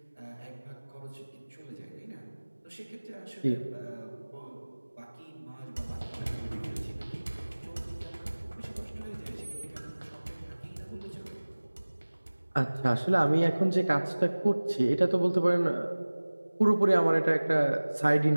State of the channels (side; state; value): both; inverted; correlation -1.00